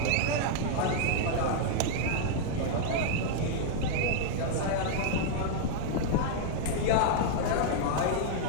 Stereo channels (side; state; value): both; different; correlation -0.01